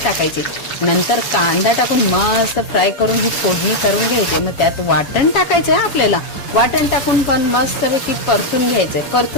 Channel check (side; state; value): right; late; 7.0 ms